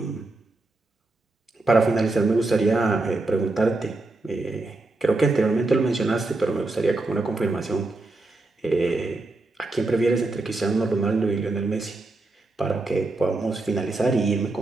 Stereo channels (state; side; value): quieter; left; 3.1 dB